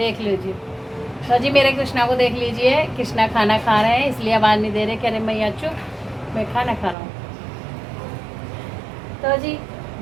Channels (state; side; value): drops out; left; at 7.0 s